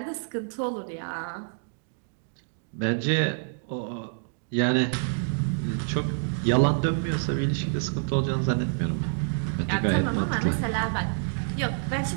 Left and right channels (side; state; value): left; silent; digital silence